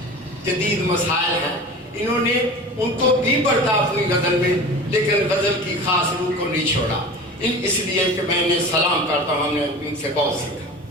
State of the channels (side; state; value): both; normal; correlation 0.35